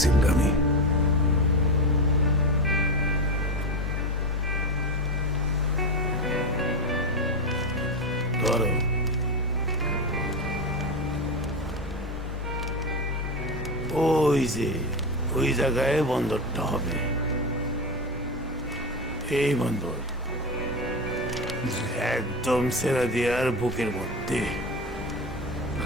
ওই যে ওই জায়গায় বন্দরটা হবে, এই বন্দর একদম সেরাদিয়ার বুকের মধ্যে।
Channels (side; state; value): both; normal; correlation 0.18